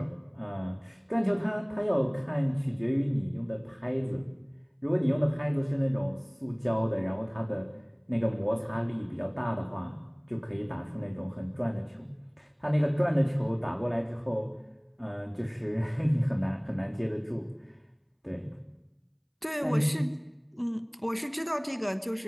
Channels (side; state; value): both; identical; correlation 1.00